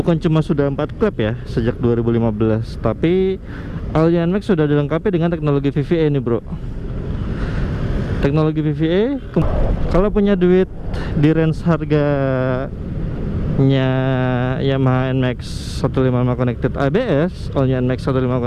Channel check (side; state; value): both; identical; correlation 1.00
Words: cuma sudah 4 klep ya sejak 2015, tapi all new NMAX sudah dilengkapi dengan teknologi VVA nih bro. Teknologi VVA, kalau punya duit di range harganya Yamaha NMAX 155 Connected ABS, all new NMAX 155